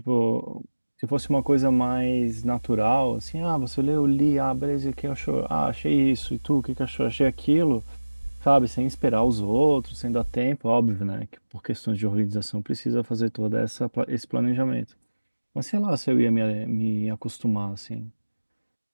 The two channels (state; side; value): inverted; both; correlation -1.00